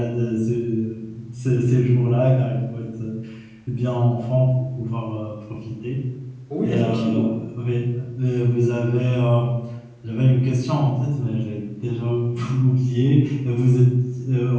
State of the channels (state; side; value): identical; both; correlation 1.00